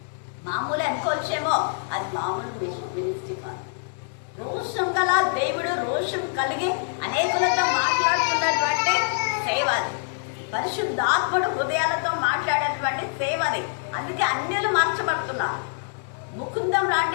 మామూలు అనుకోవచ్చేమో, అది మామూలు మినిస్ట్రీ కాదు. రోషం గల దేవుడు రోషం కలిగి అనేకులతో మాట్లాడుతున్నటువంటి సేవ అది. పరిశుద్ధాత్ముడు హృదయాలతో మాట్లాడేటువంటి సేవ అది. అందుకే అన్యులు మార్చబడుతున్నారు. ముకుందం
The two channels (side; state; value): right; silent; digital silence